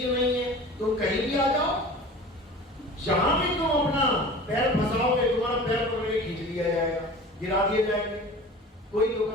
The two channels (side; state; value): both; normal; correlation 0.39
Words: नहीं है। तुम कहीं भी आ जाओ, जहां भी तुम अपना पैर फंसाओगे, तुम्हारा पैर पकड़ के खींच लिया जाएगा, गिरा दिए जाएंगे। कोई